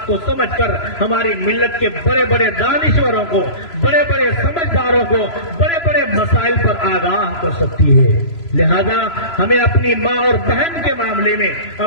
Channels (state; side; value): late; right; 3.0 ms